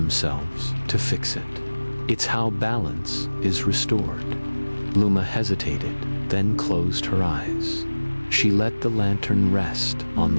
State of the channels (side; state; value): both; inverted; correlation -1.00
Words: to fix it. It's how balance is restored." Luma hesitated, then closed her eyes. She let the lantern rest on